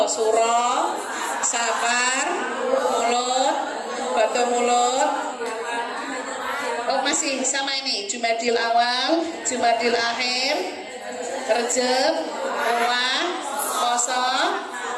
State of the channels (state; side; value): identical; both; correlation 1.00